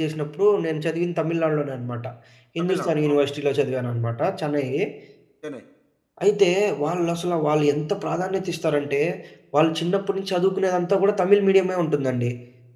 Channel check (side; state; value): both; identical; correlation 1.00